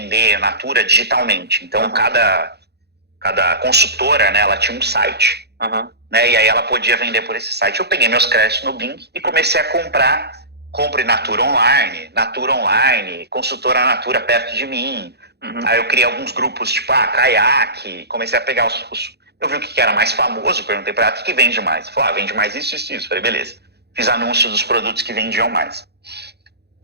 Natura digitalmente. Então cada consultora, né, ela tinha um site. Né, e aí ela podia vender por esse site. Eu peguei meus créditos no Bing e comecei a compre Natura online, consultora Natura perto de mim. Aí eu criei alguns grupos, tipo, caiaque, comecei a pegar eu vi o que era mais famoso, perguntei pra ela, o que vende mais? Ela falou, vende mais isso. Falei, beleza. Fiz anúncio dos produtos que vendiam mais.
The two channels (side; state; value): left; late; 0.48 ms